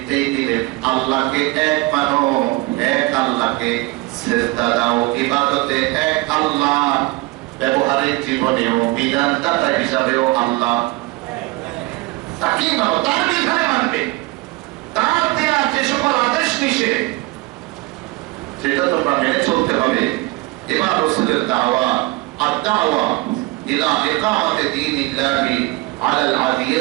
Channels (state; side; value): quieter; left; 21.6 dB